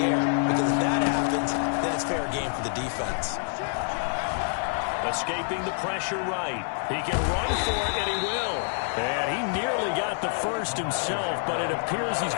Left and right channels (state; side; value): silent; right; digital silence